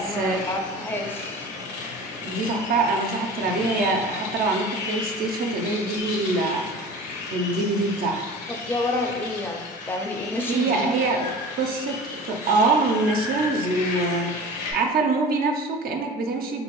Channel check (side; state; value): both; normal; correlation 0.38